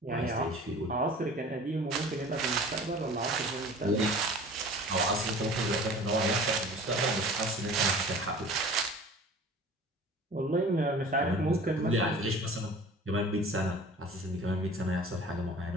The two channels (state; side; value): normal; both; correlation 0.43